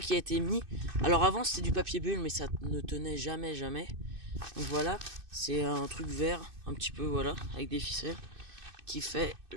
qui a été mis. Alors avant c'était du papier bulle, mais ça ne tenait jamais. Donc voilà, c'est un truc vert, un petit peu, voilà, avec des ficelles, qui fait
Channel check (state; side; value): late; left; 2.6 ms